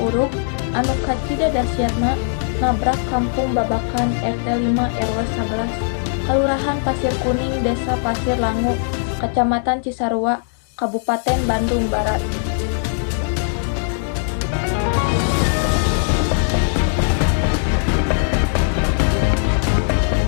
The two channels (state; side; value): silent; right; digital silence